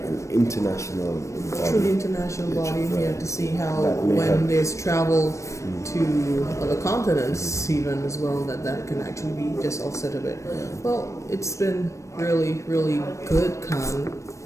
international body. Truly international body, Right. to see how That may when help. there's travel to other continents even as well, that can actually be just offset a bit. Well, it's been really, really good, Khan,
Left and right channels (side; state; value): right; late; 0.15 ms